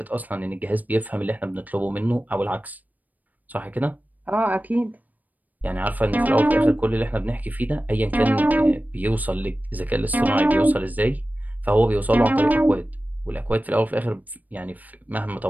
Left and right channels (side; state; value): left; late; 0.081 ms